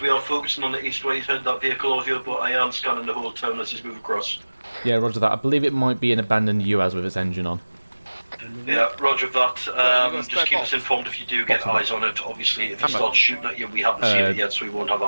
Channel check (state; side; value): inverted; both; correlation -1.00